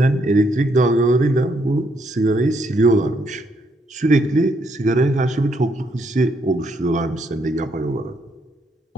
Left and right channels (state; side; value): normal; both; correlation 0.74